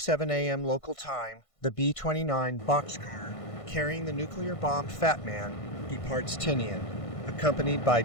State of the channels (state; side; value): late; right; 1.5 ms